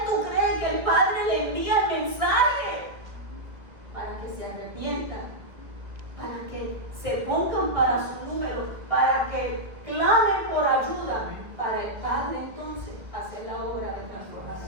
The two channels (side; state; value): left; late; 1.4 ms